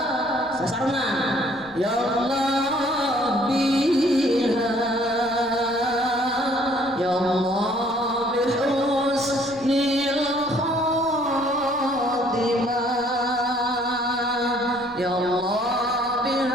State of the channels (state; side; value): noise; left; rumble, 23 dB below the sound